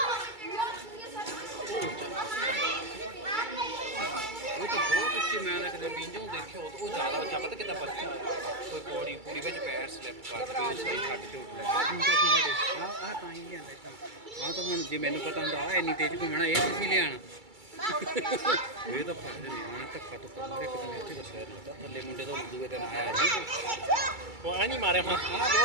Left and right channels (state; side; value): late; left; 2.3 ms